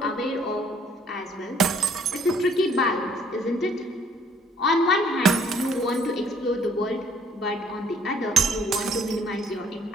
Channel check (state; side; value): normal; both; correlation 0.61